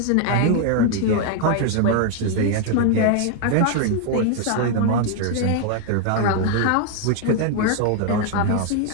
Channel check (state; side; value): different; both; correlation 0.00